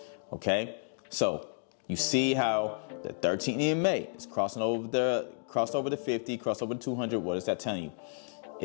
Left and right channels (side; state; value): right; silent; digital silence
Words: okay? So you see how the 13 EMA is crossed over the 50, crossed over the 200. What is that telling you?